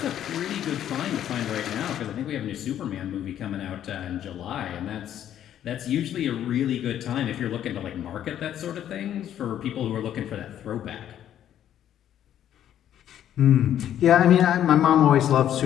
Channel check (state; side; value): quieter; right; 10.8 dB